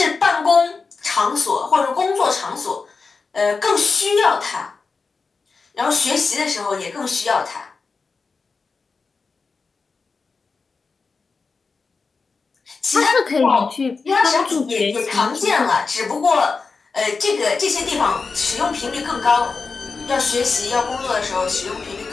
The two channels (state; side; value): quieter; right; 4.5 dB